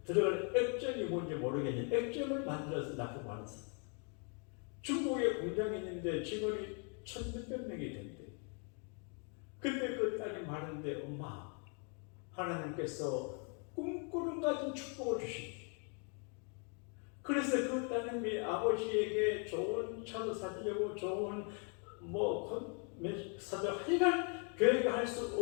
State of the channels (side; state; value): right; quieter; 38.9 dB